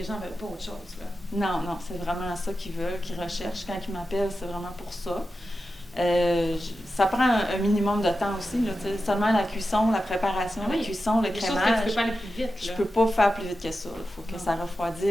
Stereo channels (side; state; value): both; normal; correlation 0.91